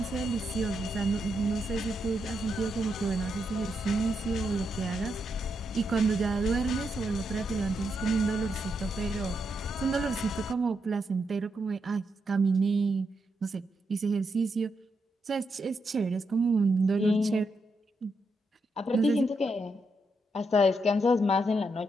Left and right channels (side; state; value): both; normal; correlation 0.82